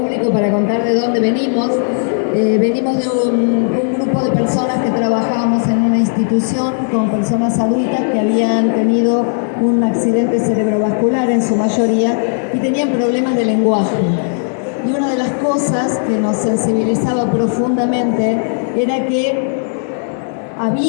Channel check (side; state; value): right; silent; digital silence